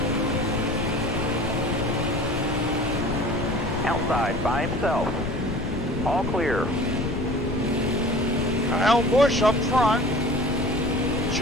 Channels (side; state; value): left; noise; rumble, 5 dB below the sound